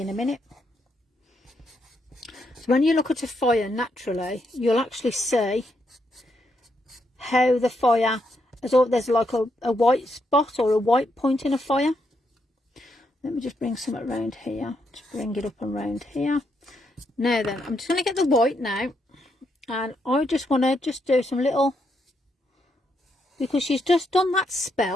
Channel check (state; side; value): normal; both; correlation 0.79